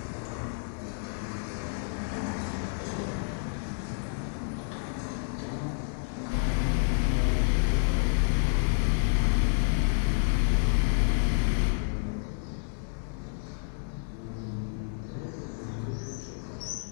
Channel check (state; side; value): silent; right; 58 dB below the other